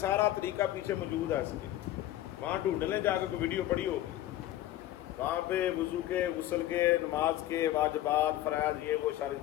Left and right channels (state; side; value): quieter; right; 14.1 dB